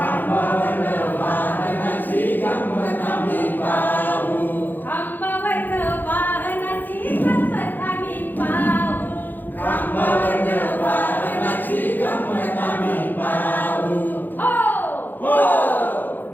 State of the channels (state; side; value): late; right; 0.088 ms